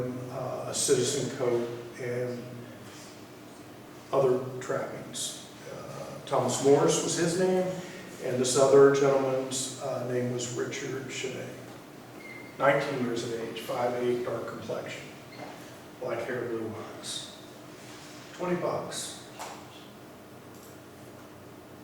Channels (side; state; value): both; identical; correlation 1.00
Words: a citizen coat and other trappings. Thomas Morris was his name, and this other gentleman's name was Richard Chenet. 19 years of age, 5'8", dark complexion, black hair, blue eyes. $20.